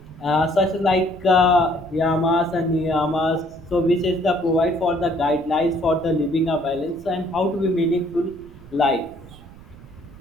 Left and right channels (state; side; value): noise; right; rumble, 20 dB below the sound